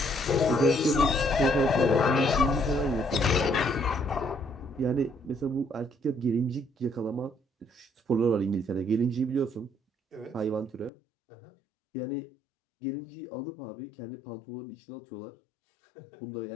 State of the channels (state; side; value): drops out; right; at 10.9 s